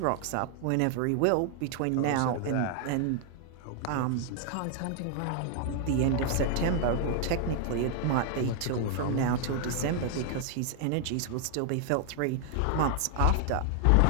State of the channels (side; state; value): both; different; correlation 0.00